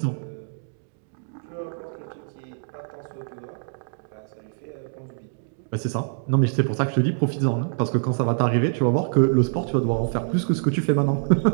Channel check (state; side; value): silent; left; digital silence